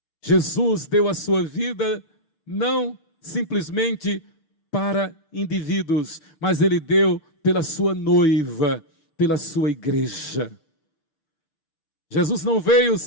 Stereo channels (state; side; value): late; right; 6.7 ms